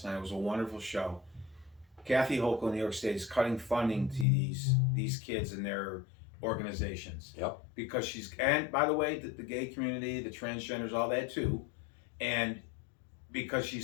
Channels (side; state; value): right; drops out; at 4.2 s